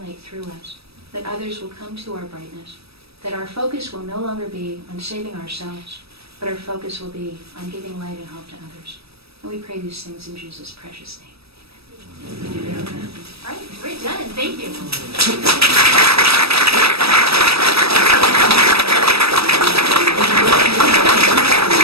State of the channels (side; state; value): left; late; 0.78 ms